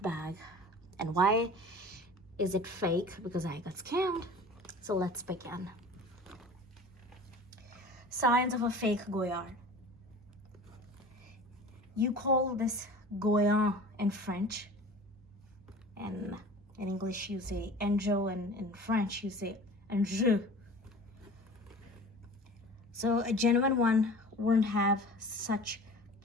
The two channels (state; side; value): normal; both; correlation 0.40